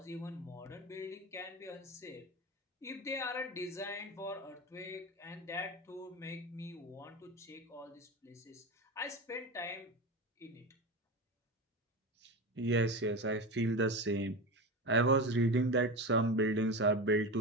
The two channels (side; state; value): both; normal; correlation 0.23